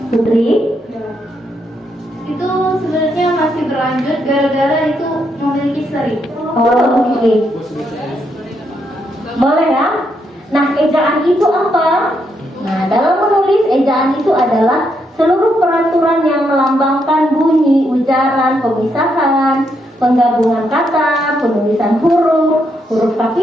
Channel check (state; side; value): normal; both; correlation 0.78